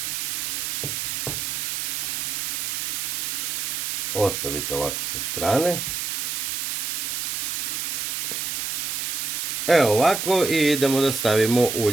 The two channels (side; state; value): right; noise; hiss, 1 dB below the sound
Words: Ostavite ovako sa strane. Evo ovako i idemo da stavimo